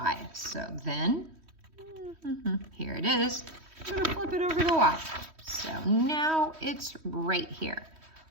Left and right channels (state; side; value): late; left; 3.1 ms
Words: So then, here it is. I'm gonna flip it over the Y. So now it's right here.